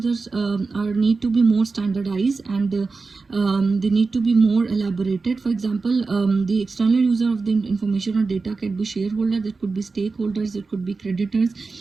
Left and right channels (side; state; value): left; quieter; 4.1 dB